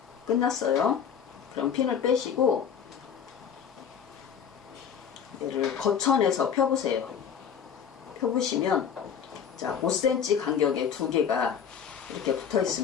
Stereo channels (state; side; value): quieter; right; 7.7 dB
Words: 끝났어요. 그럼 핀을 빼시고 얘를 거천에서 펴보세요. 펴보시면, 자, 5cm 간격에 두 개가 이렇게 붙어